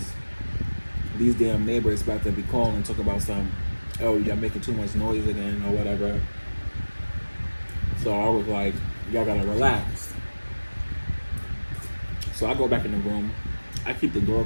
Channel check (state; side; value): inverted; both; correlation -1.00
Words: these damn neighbors about to be calling and talk about some, oh, y'all making too much noise again or whatever. So I was like, y'all gotta relax. So I go back in the room. I keep the door